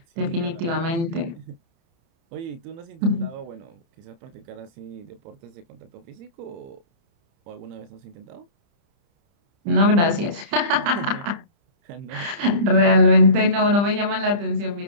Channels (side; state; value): left; late; 30 ms